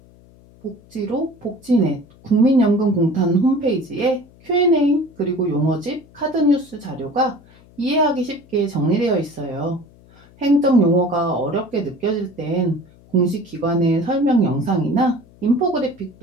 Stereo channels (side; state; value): left; noise; hum, 26 dB below the sound